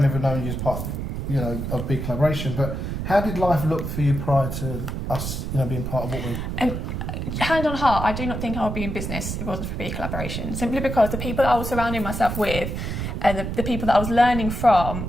ever known you as part of, of BeCollaboration, but how did life look for you prior to us, being part of what we? Hand on heart, I do not think I would be in business if it wasn't for BeCollaboration. Simply because the people that I was surrounding myself with, and the people that I was learning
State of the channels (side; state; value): right; noise; rumble, 4 dB below the sound